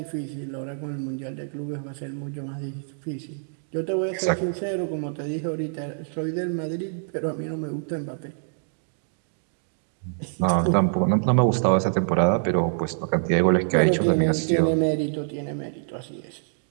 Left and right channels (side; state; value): left; silent; digital silence